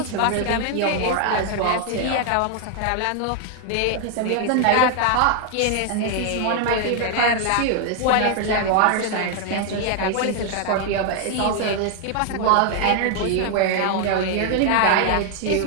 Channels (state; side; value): different; both; correlation 0.00